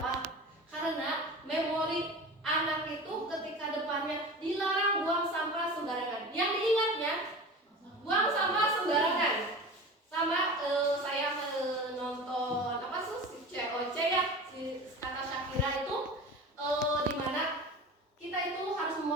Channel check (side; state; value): both; normal; correlation 0.34